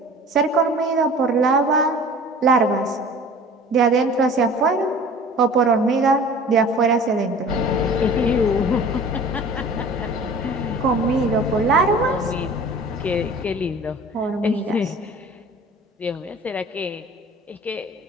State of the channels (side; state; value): both; normal; correlation 0.43